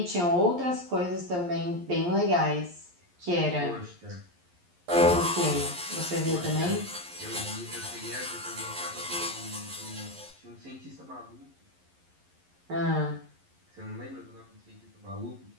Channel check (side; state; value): left; late; 11 ms